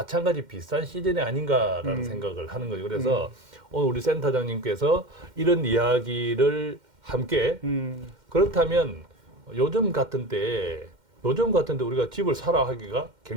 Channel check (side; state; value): left; late; 2.1 ms